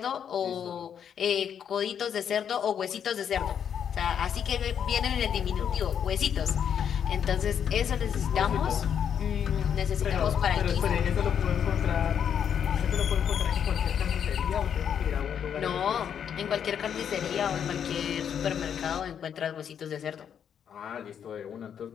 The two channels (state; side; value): quieter; right; 8.3 dB